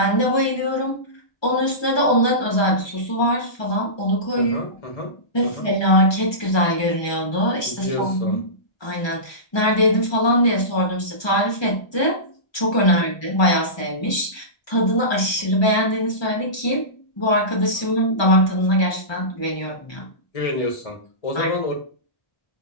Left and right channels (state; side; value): late; right; 1.2 ms